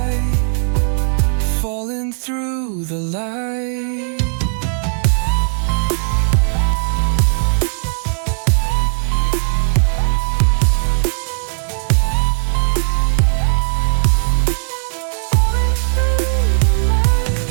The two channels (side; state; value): left; silent; digital silence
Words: falling through the light.